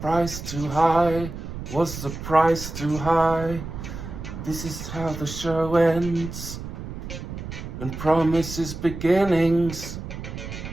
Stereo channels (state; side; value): noise; right; rumble, 9 dB below the sound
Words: too high? Was the price too high? This is how the show ends and promises beginnings.